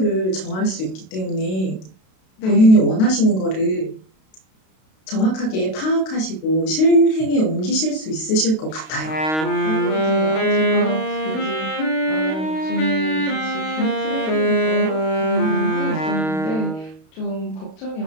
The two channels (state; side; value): late; right; 32 ms